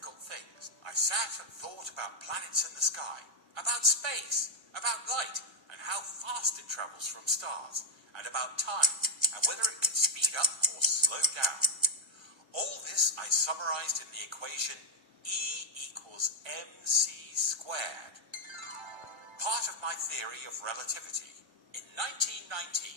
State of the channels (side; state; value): left; late; 1.4 ms